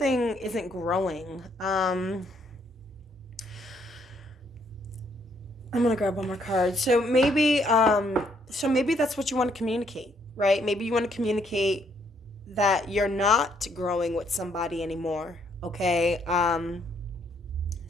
isn't growing. I'm going to grab one more card. So maybe that's what you want to communicate, right? Maybe you want to communicate that you're not growing with somebody anymore, okay?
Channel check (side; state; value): both; normal; correlation 0.70